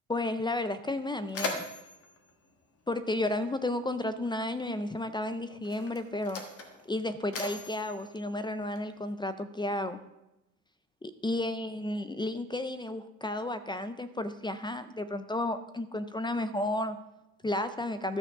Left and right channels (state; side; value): normal; both; correlation 0.57